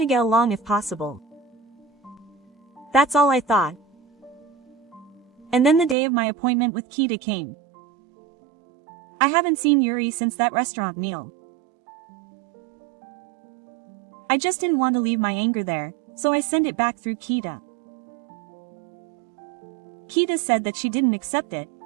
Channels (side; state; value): left; drops out; at 6.0 s